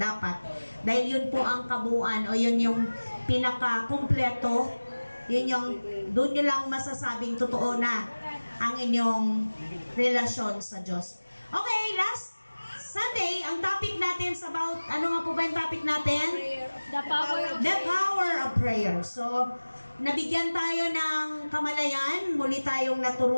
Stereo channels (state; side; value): inverted; both; correlation -1.00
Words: Dahil yun po ang kabuuan o yun yung pinaka-kumpleto. Yun yung, doon nyo lang masasabing totoo na ang inyong relasyon sa Diyos. Okay, last Sunday, ang topic natin is about, ano nga po ba yung topic natin? The power of prayer. So, nabigyan tayo ng kamalayan, muli tayong